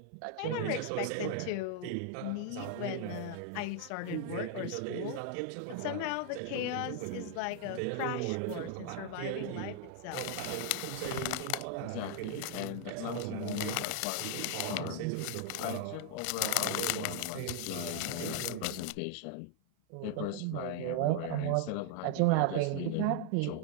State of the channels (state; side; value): different; both; correlation 0.00